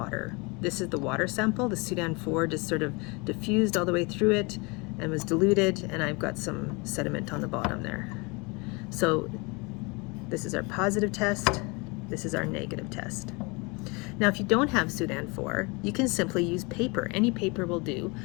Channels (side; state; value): right; quieter; 28.4 dB